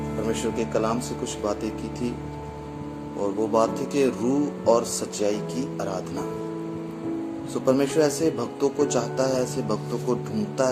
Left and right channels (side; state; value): both; identical; correlation 1.00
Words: परमेश्वर के कलाम से कुछ बातें की थी और वो बात थी कि रूह और सच्चाई की आराधना। परमेश्वर ऐसे भक्तों को चाहता है, ऐसे भक्तों को ढूंढता